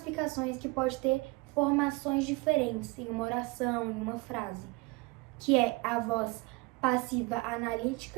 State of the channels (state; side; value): quieter; left; 24.7 dB